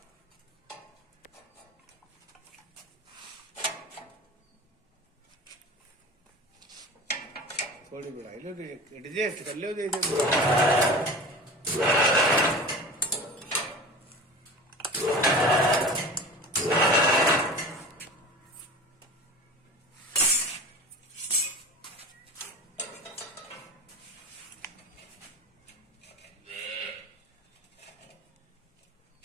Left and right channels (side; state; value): both; normal; correlation 0.35